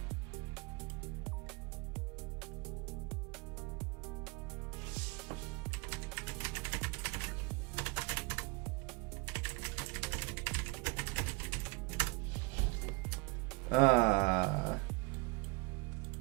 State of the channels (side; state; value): left; quieter; 26.5 dB